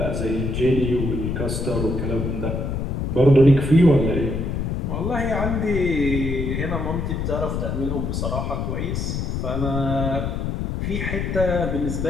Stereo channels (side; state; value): left; noise; rumble, 2 dB below the sound